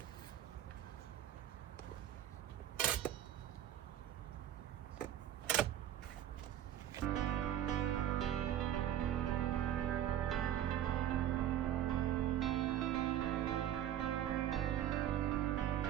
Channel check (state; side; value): quieter; left; 11.2 dB